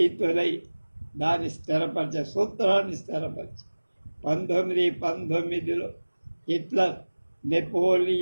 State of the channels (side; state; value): both; inverted; correlation -1.00